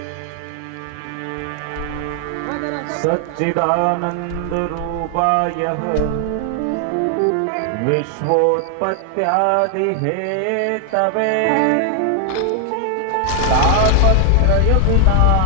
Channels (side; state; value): both; different; correlation 0.00